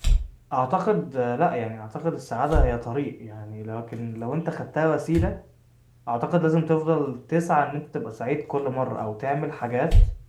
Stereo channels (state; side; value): identical; both; correlation 1.00